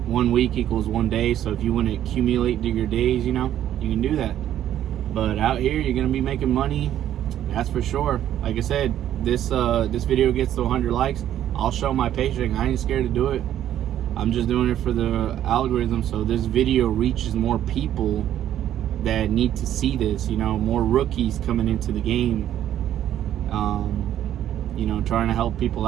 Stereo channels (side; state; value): left; quieter; 11.4 dB